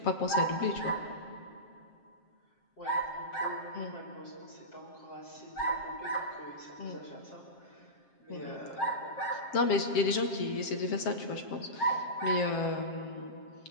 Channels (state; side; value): late; right; 7.5 ms